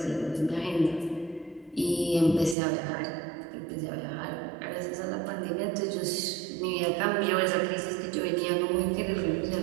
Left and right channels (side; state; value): left; drops out; at 2.6 s